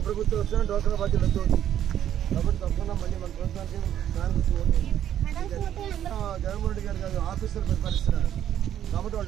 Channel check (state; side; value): quieter; left; 10.6 dB